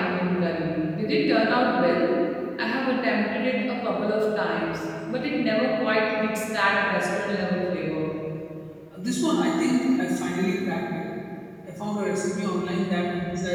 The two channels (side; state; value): both; identical; correlation 1.00